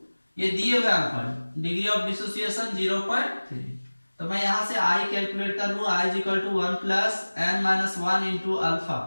ये दिए हुए अल्फा, डिग्री ऑफ डिसोसिएशन 0.3, तो मैं यहां से आई कैलकुलेट कर लूं, i is equal to 1 plus n minus 1 into alpha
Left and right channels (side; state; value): both; inverted; correlation -1.00